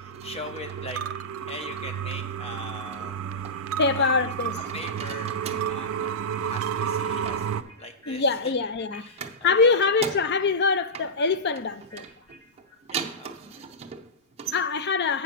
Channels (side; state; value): both; normal; correlation -0.15